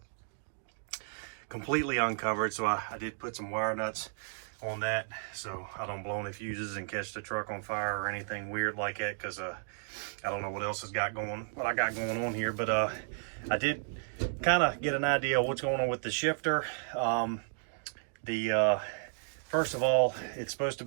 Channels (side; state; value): left; silent; digital silence